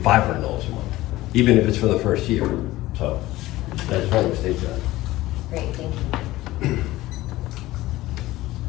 $500 a month, even if it's for the first year? So I just wanted to state that. Great, thank you.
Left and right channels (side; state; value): right; quieter; 17.4 dB